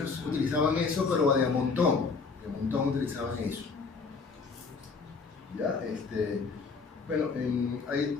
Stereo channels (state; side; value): quieter; right; 4.7 dB